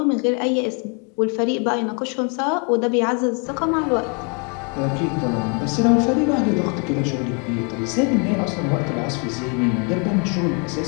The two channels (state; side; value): quieter; right; 36.0 dB